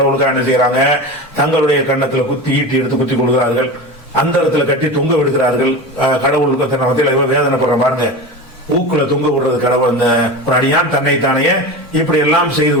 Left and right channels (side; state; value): both; normal; correlation 0.27